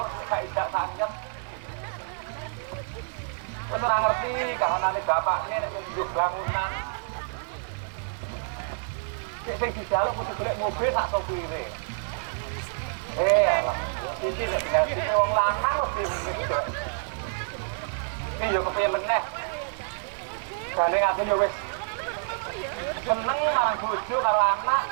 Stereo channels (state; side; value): silent; left; 58 dB below the other